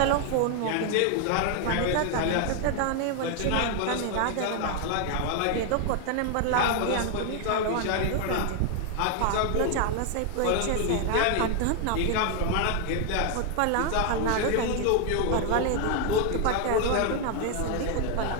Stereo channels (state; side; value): different; both; correlation 0.00